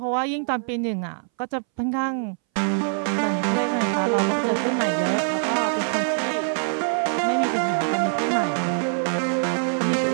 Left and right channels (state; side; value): silent; left; 62 dB below the other